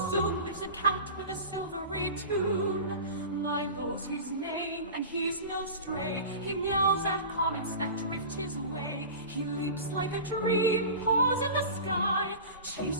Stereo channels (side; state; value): both; inverted; correlation -0.33